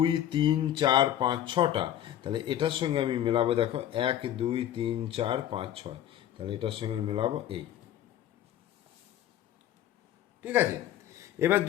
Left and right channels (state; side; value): quieter; right; 11.5 dB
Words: 3 4 5 6টা, তাহলে এটার সঙ্গে আমি মেলাবো। দেখো 1 2 3 4 5 6, তাহলে এটার সঙ্গে মেলাবো এই। ঠিক আছে, এবার